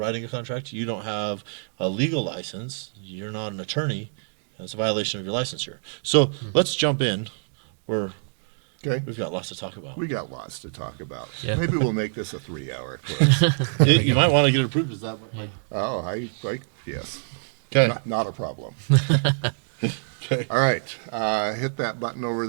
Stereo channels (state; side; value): silent; left; digital silence